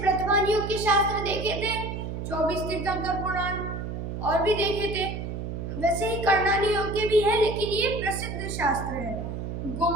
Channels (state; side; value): noise; right; hum, 5 dB below the sound